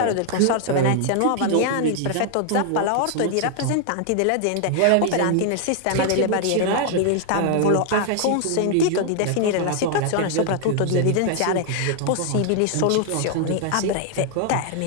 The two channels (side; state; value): both; different; correlation 0.00